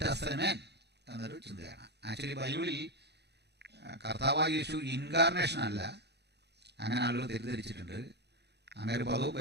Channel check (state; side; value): late; left; 0.49 ms